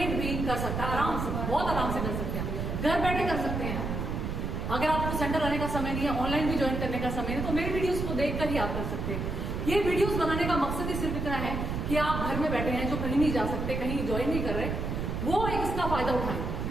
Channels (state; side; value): noise; right; rumble, 3 dB below the sound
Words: भी कर सकता है, आराम से, बहुत आराम से कर सकते हैं, घर बैठे कर सकते हैं। अगर आपको सेंटर आने का समय नहीं है, ऑनलाइन भी ज्वाइन करने का समय नहीं, तो मेरी वीडियोस को देखकर ही आप कर सकते हैं। ये वीडियोस बनाने का मकसद ही सिर्फ इतना है कि आप घर में बैठे हैं, जो कहीं नहीं जा सकते, कहीं ज्वाइन नहीं कर रहे, वो एक इसका फायदा उठाएं,